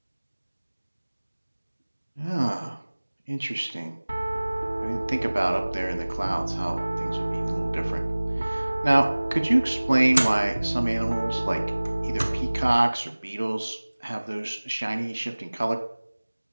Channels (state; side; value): inverted; both; correlation -1.00